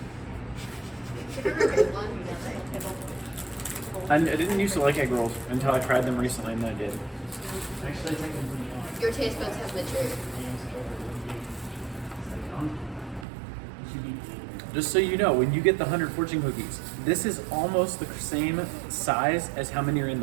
I didn't used to like egg rolls until I tried them recently, and then I did. Your taste buds have matured. Just so you know, when you get the 100 fortune cookies, this is almost the same size as how many are in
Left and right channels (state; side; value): drops out; left; at 13.2 s